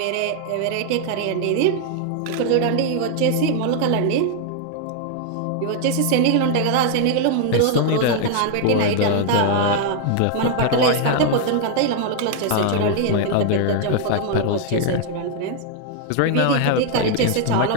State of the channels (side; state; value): both; different; correlation 0.00